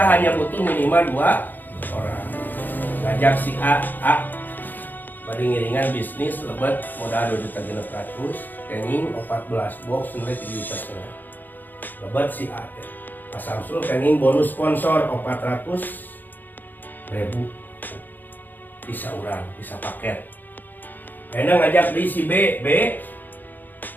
hanya butuh minimal 2 orang. Ngajak si A bari ngiringan bisnis lebat modal 2.600.000 kenging 14 box nilai 3,5 juta. Lebat si A Pak Samsul kenging bonus sponsor 400.000 bisa urang, bisa paket. Enak ngajak di si B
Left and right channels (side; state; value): right; late; 0.088 ms